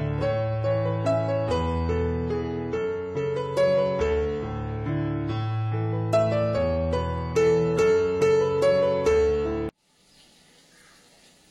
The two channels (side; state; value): both; identical; correlation 1.00